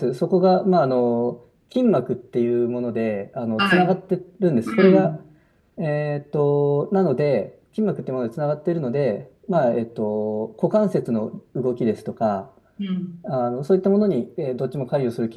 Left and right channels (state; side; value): identical; both; correlation 1.00